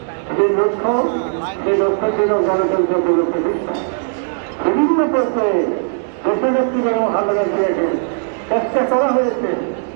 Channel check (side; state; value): left; silent; digital silence